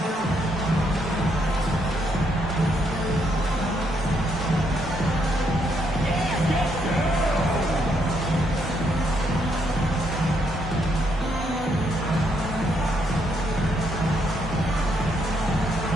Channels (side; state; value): both; normal; correlation 0.74